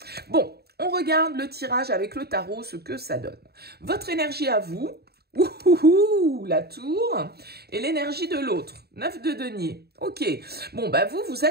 Bon, on regarde le tirage avec le tarot, ce que ça donne. Votre énergie à vous, ouhouhou, la tour, et l'énergie de l'autre, 9 de denier. Ok, bon, bah vous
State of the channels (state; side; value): late; left; 0.46 ms